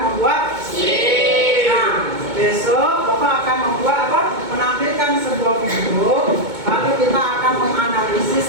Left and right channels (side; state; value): left; late; 2.2 ms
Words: membuat SIM. Nah, besok Bapak akan membuat apa? Menampilkan sebuah video, lalu kita akan